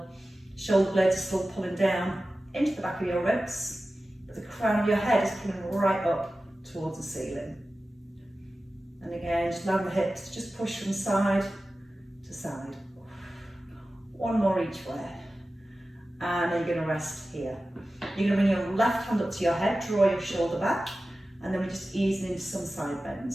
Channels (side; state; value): both; normal; correlation 0.95